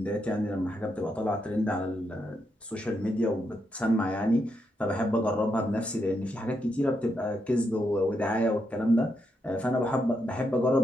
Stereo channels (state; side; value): normal; both; correlation 0.81